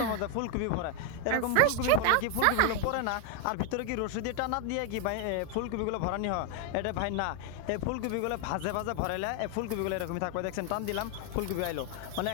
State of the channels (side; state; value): both; different; correlation 0.01